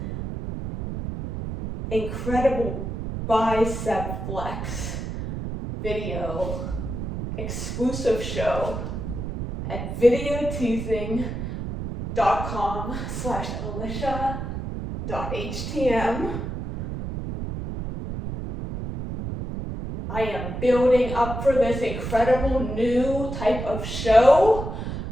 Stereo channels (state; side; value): noise; right; rumble, 5 dB below the sound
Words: bicep flex video exclusive show at videoteasing.com/alicia.htm. I am building up for this incredible new type of show